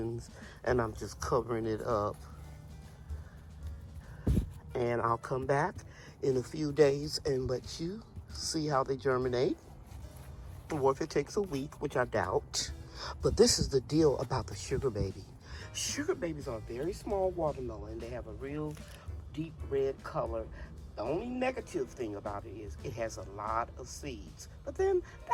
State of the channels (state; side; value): identical; both; correlation 1.00